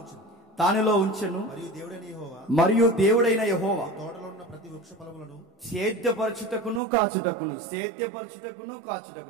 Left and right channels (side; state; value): left; drops out; at 6.8 s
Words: దానిలో ఉంచెను. మరియు దేవుడైన యెహోవా సేద్యపరచుటకును కాచుటకును.